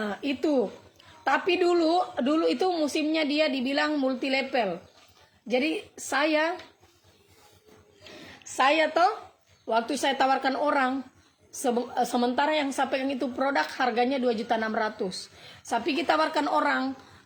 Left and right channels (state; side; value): identical; both; correlation 1.00